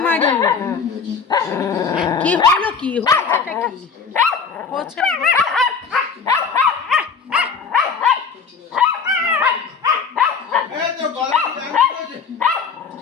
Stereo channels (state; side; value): quieter; right; 5.7 dB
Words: কি হলো, কি হয়েছেটা কি হচ্ছে?